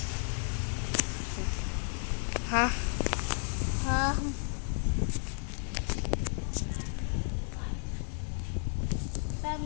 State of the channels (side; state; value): right; silent; 56 dB below the other